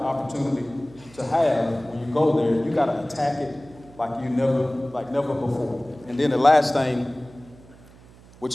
opportunity to have when you go there. You got to attack it like never before. And then the last thing,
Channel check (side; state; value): right; noise; hum, 23 dB below the sound